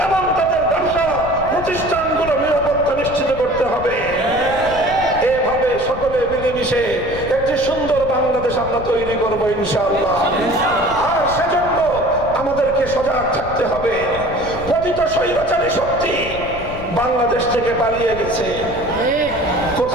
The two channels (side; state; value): left; noise; rumble, 12 dB below the sound